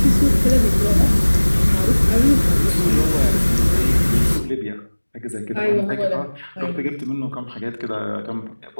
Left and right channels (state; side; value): inverted; both; correlation -1.00